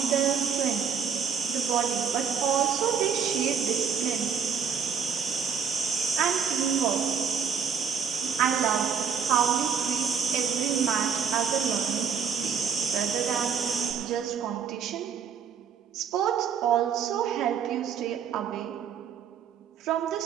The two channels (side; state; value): left; quieter; 6.9 dB